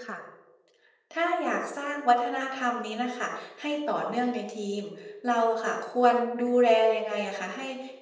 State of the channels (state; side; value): identical; both; correlation 1.00